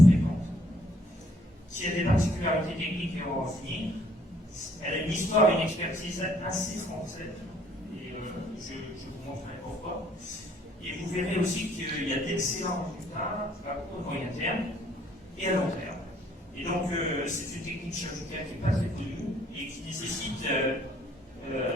fréquente, qui a des particularités techniques et on va en finir. Elle a une histoire et une expertise assez française, et je vous montrerai pourquoi. Et vous verrez aussi qu'il y a d'excellents résultats à court et moyen terme et à long terme. Et donc, c'est une technique chirurgicale qui n'est pas très connue et qui nécessite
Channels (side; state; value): both; normal; correlation 0.64